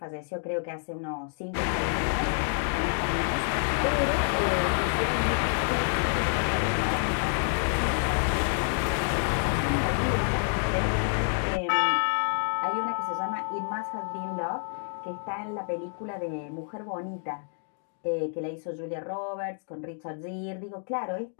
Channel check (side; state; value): right; silent; 59 dB below the other